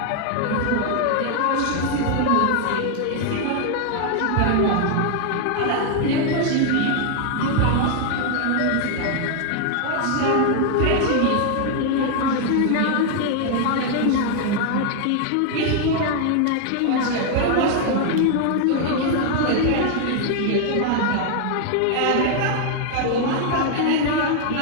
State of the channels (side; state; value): both; different; correlation 0.00